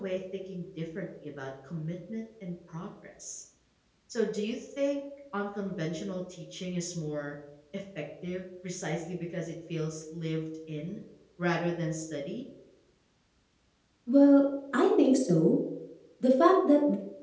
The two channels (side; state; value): both; identical; correlation 1.00